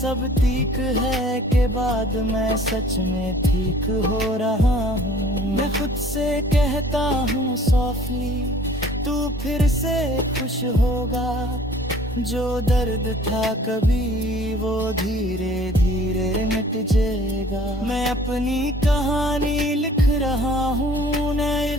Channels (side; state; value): both; normal; correlation 0.52